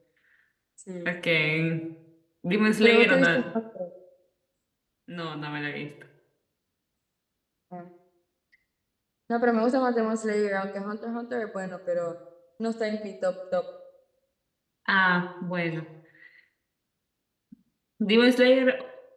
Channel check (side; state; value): both; identical; correlation 1.00